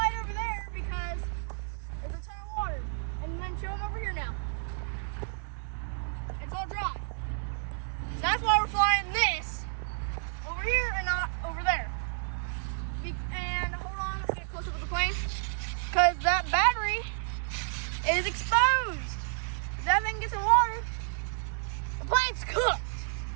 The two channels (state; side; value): silent; left; digital silence